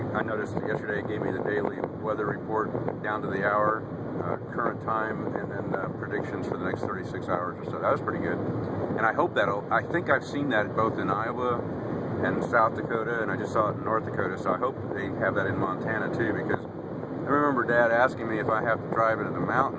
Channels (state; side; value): identical; both; correlation 1.00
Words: noticed yesterday it gave me the daily weather report down to the hour, current time, and then predictions for the next 36 hours or so. That was pretty good. And I think I've seen that both in Iowa and South Dakota, and I just saw it in North Dakota, so I hope they have that in Montana too, because I remember Dad asking me if I have to drive into the